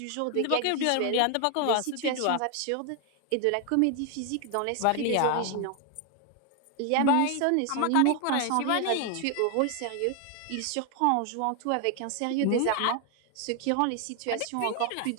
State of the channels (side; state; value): both; different; correlation 0.01